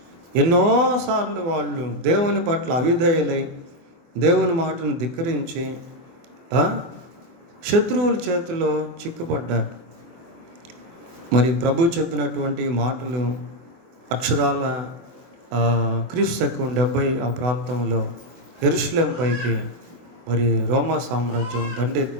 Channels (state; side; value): late; left; 24 ms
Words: ఎన్నోసార్లు వాళ్ళు దేవుని పట్ల అవిధేయులై దేవుని మాటను ధిక్కరించి శత్రువుల చేతిలో చిక్కుపడ్డారు. మరి ప్రభు చెప్పినటువంటి మాటలు అక్షరాల క్రీస్తు 70 ఆ ప్రాంతంలో యెరూషలేము పైకి మరి రోమా సామ్రాజ్యం